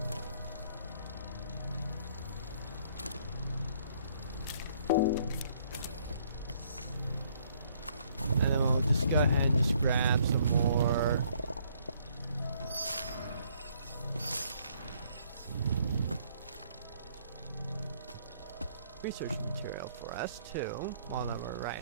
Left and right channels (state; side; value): inverted; both; correlation -0.65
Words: And then we'll just go ahead and just grab some more. Research material for us too, while we're